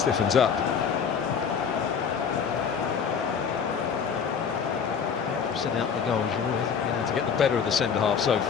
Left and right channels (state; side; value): quieter; right; 6.7 dB